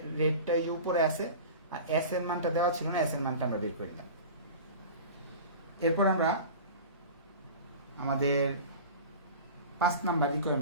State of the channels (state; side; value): inverted; both; correlation -0.35